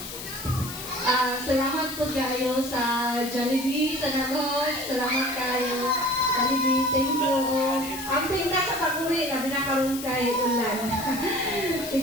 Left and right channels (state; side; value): noise; left; hiss, 10 dB below the sound